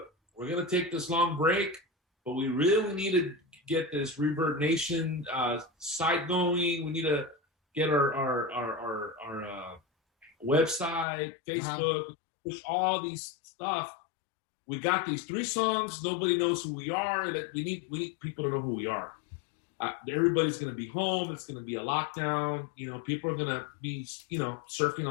we're going to take this long break, but we really need to get this Rebirth Nation site going. We need to get our website, Facebook, push all these stuff. We got these 3 songs. Nobody knows who we are. We need people to know who we are. Everybody's going to be home. It's going to be a lockdown. People are going to be, surfing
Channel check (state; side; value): drops out; right; at 11.1 s